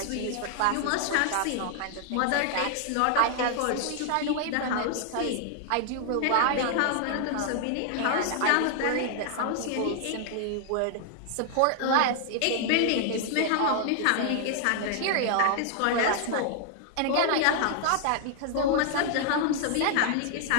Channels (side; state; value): both; different; correlation 0.00